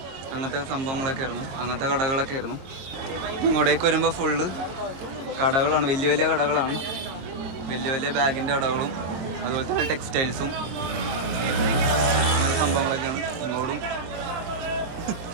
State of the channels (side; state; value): left; late; 22 ms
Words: അങ്ങനത്തെ സംഭവങ്ങളൊക്കെ ആയിരുന്നു, അങ്ങനത്തെ കടകളൊക്കെ ആയിരുന്നു. ഇങ്ങോട്ടേക്ക് വരുമ്പോൾ ഫുള്ള് കടകളാണ്, വലിയ വലിയ കടകളാണ്. വലിയ വലിയ ബാഗിൻ്റെ കടകളും അതുപോലെ തന്നെ ടെക്സ്റ്റൈൽസും അങ്ങനെ സംഭവങ്ങളൊക്കെയാണ്.